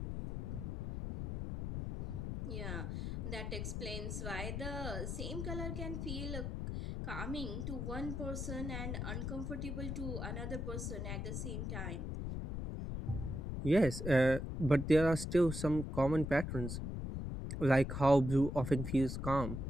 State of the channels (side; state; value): left; noise; rumble, 4 dB below the sound